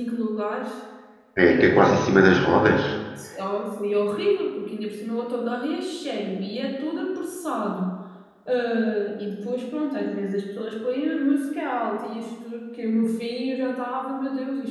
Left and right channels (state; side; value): identical; both; correlation 1.00